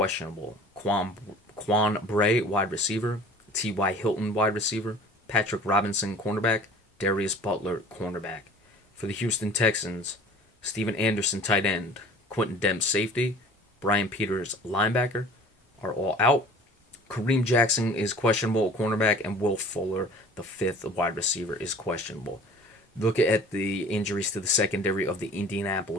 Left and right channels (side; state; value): both; normal; correlation 0.46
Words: Quan Bray, wide receiver. T.Y. Hilton, wide receiver. Patrick Robinson, cornerback. Darius Butler, cornerback. For the Houston Texans, Steven Anderson, tight end. Quentin Demps, safety. Brian Peters, linebacker, are all out. Kareem Jackson is questionable, cornerback, and Will Fuller, the fifth wide receiver, is questionable. Look at the injuries to the secondary of the